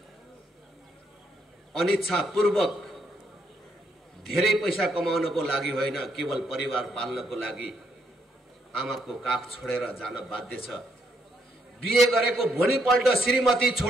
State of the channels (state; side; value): normal; both; correlation 0.75